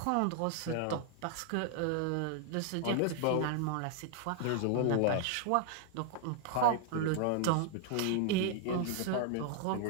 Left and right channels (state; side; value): different; both; correlation 0.00